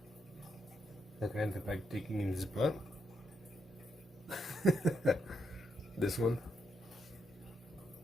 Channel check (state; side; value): normal; both; correlation 0.79